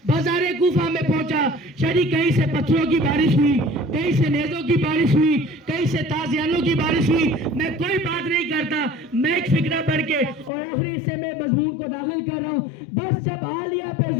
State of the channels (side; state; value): right; drops out; at 10.5 s